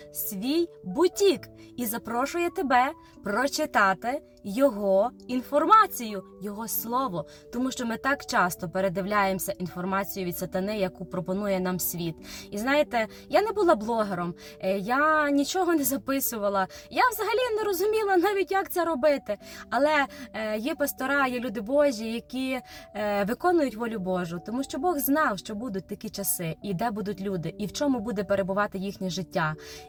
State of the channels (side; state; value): both; identical; correlation 1.00